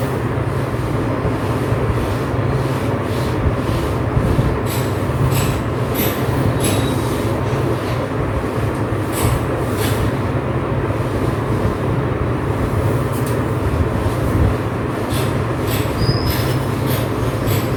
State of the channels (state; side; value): identical; both; correlation 1.00